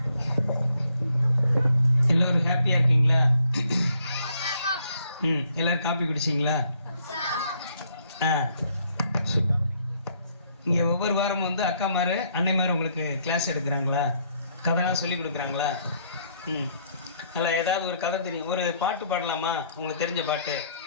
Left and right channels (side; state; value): both; inverted; correlation -0.69